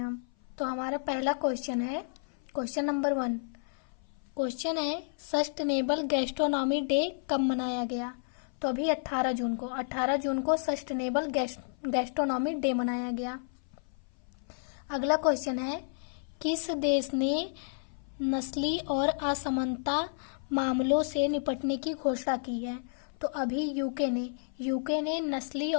हम। तो हमारा पहला क्वेश्चन है, क्वेश्चन नंबर 1। क्वेश्चन है सस्टेनेबल गैस्ट्रोनॉमी डे कब मनाया गया? तो अभी 18 जून को सस्टेनेबल गैस्ट्रोनॉमी डे मनाया गया। अगला क्वेश्चन है किस देश ने नस्ली और असमानता मामलों से निपटने की घोषणा की है? तो अभी यूके ने नस्ली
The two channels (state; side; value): silent; right; 56 dB below the other